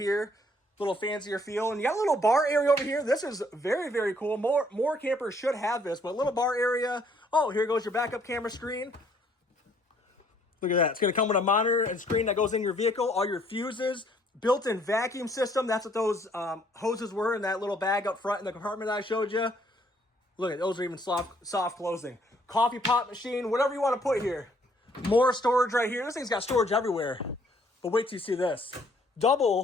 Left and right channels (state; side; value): normal; both; correlation 0.64